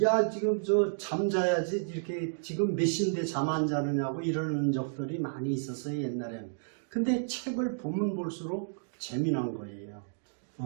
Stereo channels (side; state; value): left; silent; digital silence